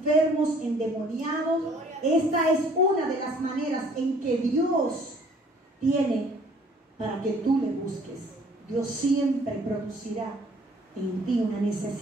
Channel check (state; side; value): normal; both; correlation 0.57